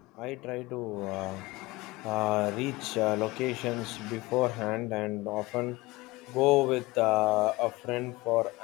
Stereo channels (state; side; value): quieter; right; 21.4 dB